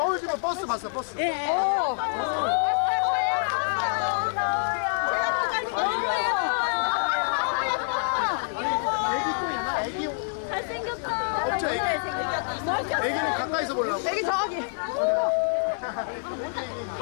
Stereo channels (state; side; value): silent; right; digital silence